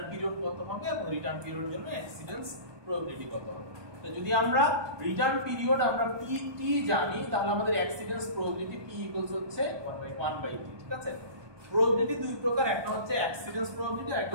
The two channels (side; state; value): left; late; 1.2 ms